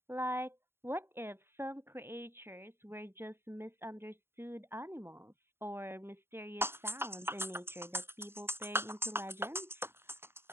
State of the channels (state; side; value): late; left; 0.11 ms